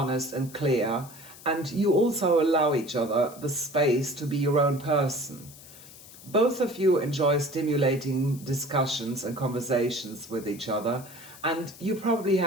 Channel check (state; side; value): noise; left; hiss, 19 dB below the sound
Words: and clear, and you also allow each other the space to be your own person. Both of you enjoy stimulating discussions and conversations with each other, and you probably